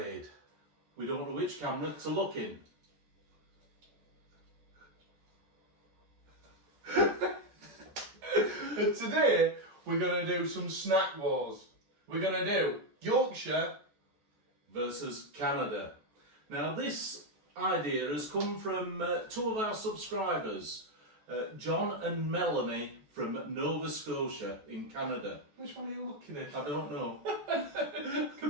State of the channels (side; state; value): left; late; 14 ms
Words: We don't know which camera to look in. And today we're going to do some snack wars. We're going to do Yorkshire Versus Canada. Now this idea has come from two of our subscribers, John and Melanie from Nova Scotia in Canada. Which one are you looking at? I don't know.